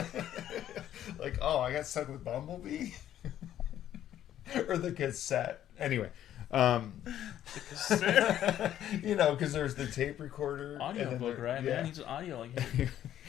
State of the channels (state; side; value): quieter; right; 11.5 dB